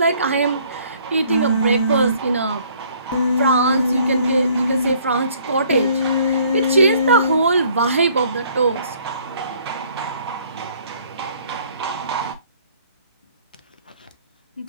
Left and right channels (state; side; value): inverted; both; correlation -0.60